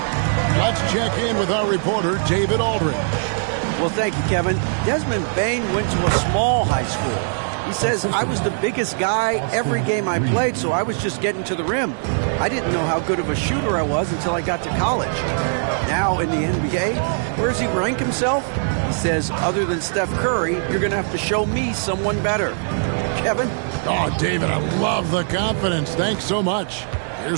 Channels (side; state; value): left; silent; 65 dB below the other